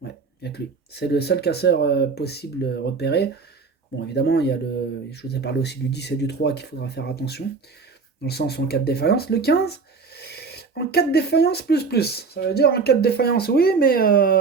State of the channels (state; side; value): quieter; left; 4.8 dB